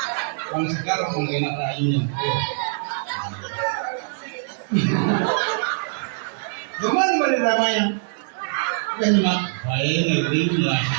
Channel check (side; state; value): left; silent; digital silence